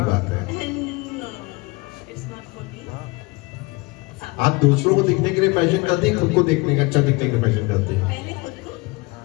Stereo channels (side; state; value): right; quieter; 24.8 dB